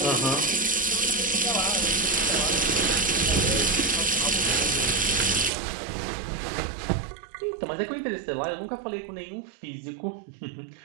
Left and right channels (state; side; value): drops out; left; at 5.5 s